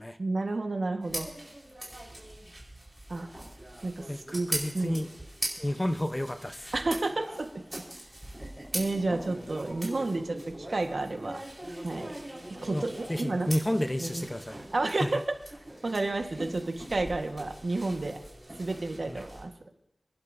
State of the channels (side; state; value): both; normal; correlation 0.98